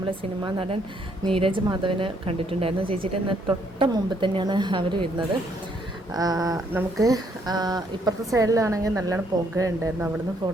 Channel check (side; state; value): both; normal; correlation 0.70